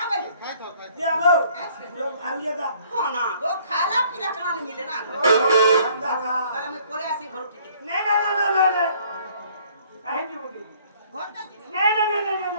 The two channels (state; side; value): inverted; both; correlation -0.59